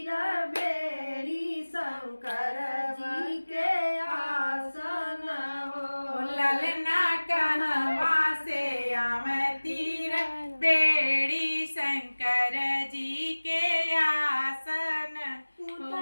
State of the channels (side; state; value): both; inverted; correlation -1.00